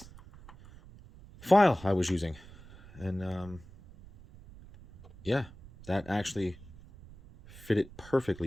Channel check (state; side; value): noise; right; rumble, 20 dB below the sound